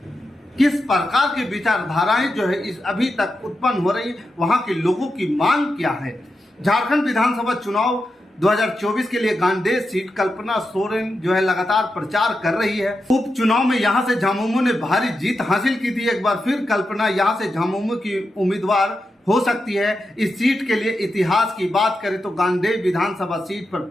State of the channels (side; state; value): both; normal; correlation 0.88